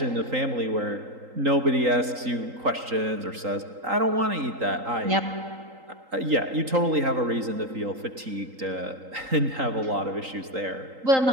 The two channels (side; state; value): left; late; 3.8 ms